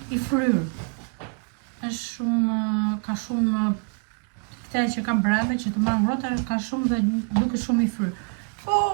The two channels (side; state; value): left; quieter; 39.3 dB